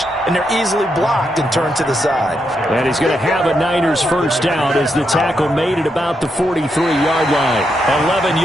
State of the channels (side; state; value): both; normal; correlation 0.82